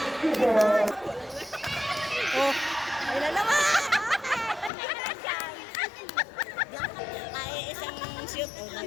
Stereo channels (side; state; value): right; drops out; at 4.7 s